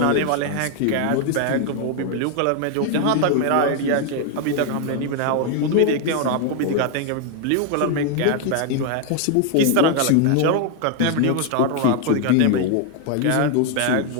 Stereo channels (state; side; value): different; both; correlation 0.01